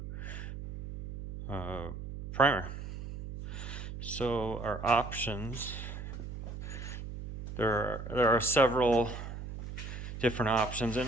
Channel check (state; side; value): noise; right; hum, 8 dB below the sound